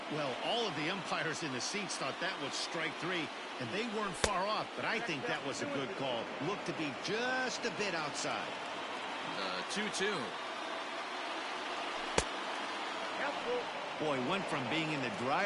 Well, all of the umpires in the seats thought that was strike three, and they weren't far off, but I think that was a good call. Looked to be just a bit outside. The 2-2. Boy, went from being in the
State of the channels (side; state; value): both; identical; correlation 1.00